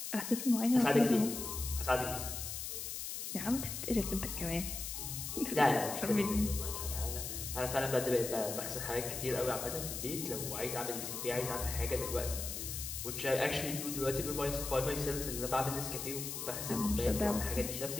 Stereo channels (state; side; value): noise; left; hiss, 5 dB below the sound